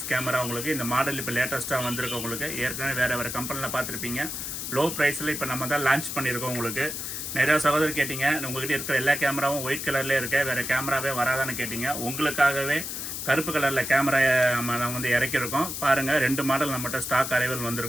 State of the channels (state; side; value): noise; left; hiss, 5 dB below the sound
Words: கேமரா. உங்களுக்கு இந்த மாடல் இப்போ லேட்டஸ்ட்டாக வந்திருக்கு. உங்களுக்கு ஏற்கனவே வேறு கம்பெனியில் பார்த்துருப்பீங்க. லோ ப்ரைஸில் இப்போ நம்ம தான் லான்ச் பண்ணியிருக்கோம். உங்களுக்கு நிறையா சகோதரர் கேட்டிங்க, உங்கள்கிட்ட இருக்கிற எல்லா கேமராவும் ஒயிட் கலர்லேயே இருக்க, வேறு கேமராவே வராதான்னு கேட்டிங்க. உங்களுக்காகவே கருப்பு கலரில் கேமரா நம்ம வந்து இறக்கியிருக்கோம். பாருங்கள், 2 மாடல் நம்மகிட்ட ஸ்டாக் அரைவல்